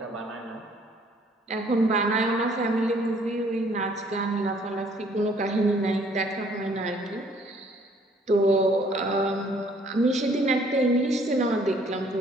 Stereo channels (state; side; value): normal; both; correlation 0.61